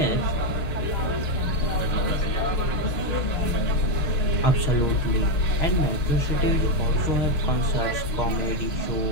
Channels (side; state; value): right; late; 6.6 ms